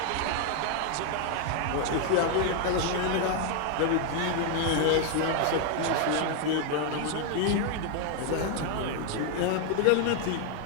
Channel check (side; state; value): both; different; correlation 0.00